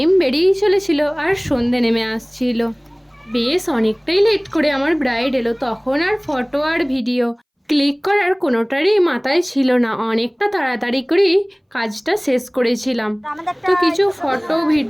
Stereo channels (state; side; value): identical; both; correlation 1.00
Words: বেরিয়েই চলেছিল আর সন্ধে নেমে আসছিল। বেশ অনেকটাই লেট করে আমার ব্রাইড এলো। তখন আর ফটো আর ভিডিও ক্লিক করার কোনোটারই মাথায় ছিল না। অনেকটা তাড়াতাড়ি করেই কাজটা শেষ করেছিলাম। তো কিছু ফটো